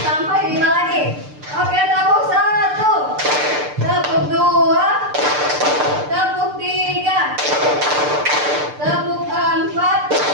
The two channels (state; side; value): late; left; 6.7 ms